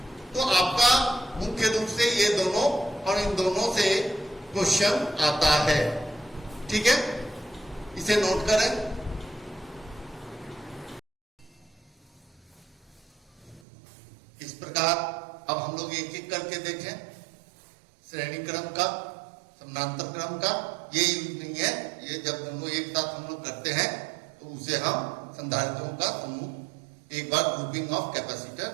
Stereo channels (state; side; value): drops out; left; at 13.6 s